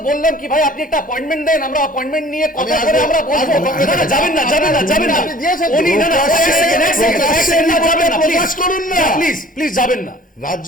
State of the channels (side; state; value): both; normal; correlation 0.49